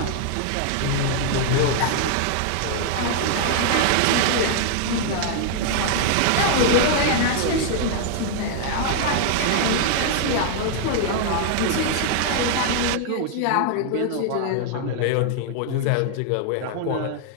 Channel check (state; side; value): different; both; correlation 0.00